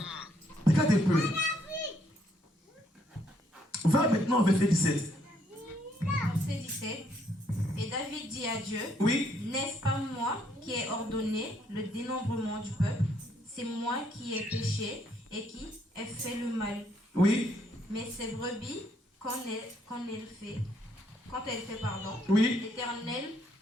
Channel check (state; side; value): normal; both; correlation 0.70